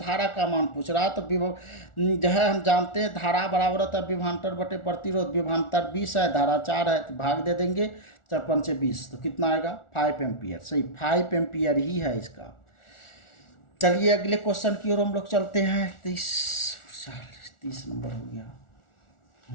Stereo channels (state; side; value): late; right; 1.4 ms